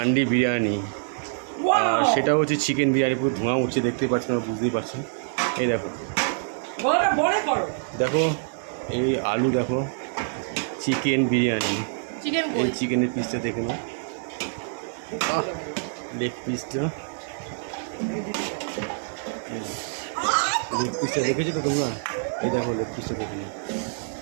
বিরিয়ানি। আর সেটা হচ্ছে চিকেন বিরিয়ানি, পুরো ধোঁয়া উঠছে, দেখতেই পাচ্ছেন, আমরা বুঝতেই পারছেন। এই দেখো দেখো, এই আলু দেখো, চিকেন বিরিয়ানি। এই চিকেনের পিসটা দেখে নাও, লেগ পিসটা, লেগ পিসটা দেখেছো তো তোমরা? এই দেখো লেগ পিসটা দেখে নাও,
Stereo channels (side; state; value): left; silent; digital silence